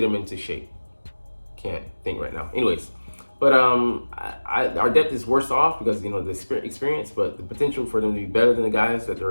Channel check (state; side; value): inverted; both; correlation -1.00